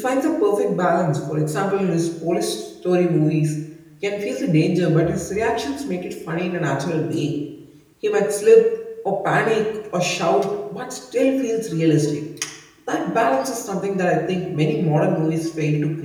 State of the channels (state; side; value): identical; both; correlation 1.00